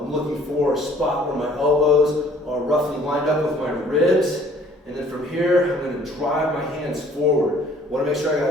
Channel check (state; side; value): normal; both; correlation 0.57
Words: looking for a spot where my elbows are roughly lined up with my ribs. And then from here, I'm going to drive my hands forward. I want to make sure I